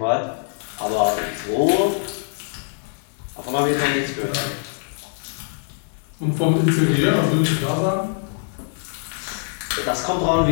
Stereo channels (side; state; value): right; silent; digital silence